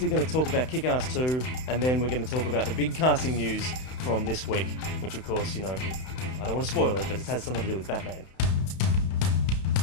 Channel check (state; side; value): late; right; 31 ms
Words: going to talk about Kick-Ass 2, and then we're going to talk about the big casting news from this week, which of course, I don't want to spoil it, but it has something to do with Batman.